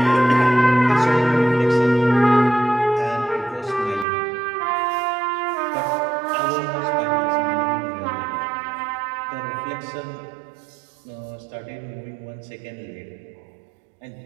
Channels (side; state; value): left; drops out; at 4.0 s